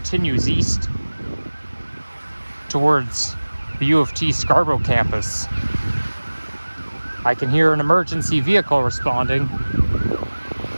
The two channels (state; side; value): inverted; both; correlation -1.00